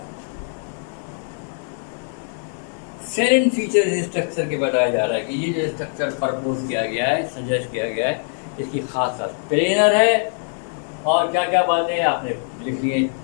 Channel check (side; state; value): right; silent; 64 dB below the other